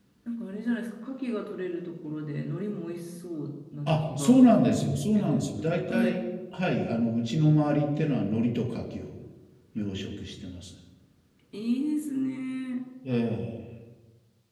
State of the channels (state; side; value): identical; both; correlation 1.00